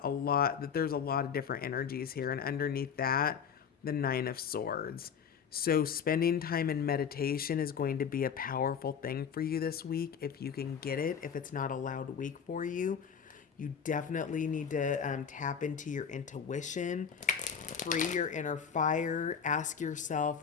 that there's a lot of different energies here, and underneath that, the Nine of Swords. So spending time in meditation is going to be a powerful thing for you this week if you can get it. If it's not a loud week for you, you definitely need to tap into your intuition, free your inner fire, ask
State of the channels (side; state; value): right; quieter; 7.1 dB